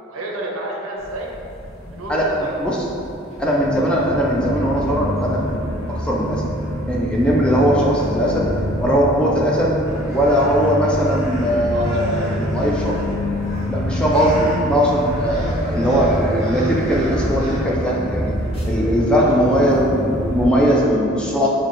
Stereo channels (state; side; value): normal; both; correlation 0.53